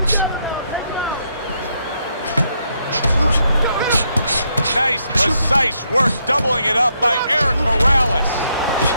Nice, precise work, doubling it up by Erik Morales.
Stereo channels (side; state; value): both; inverted; correlation -0.77